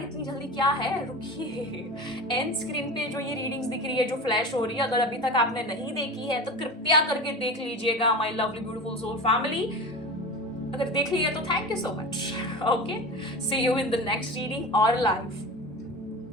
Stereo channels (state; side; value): normal; both; correlation 0.31